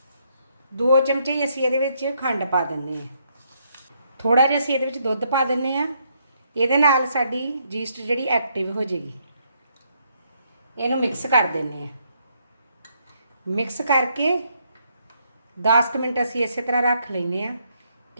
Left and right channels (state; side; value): inverted; both; correlation -0.74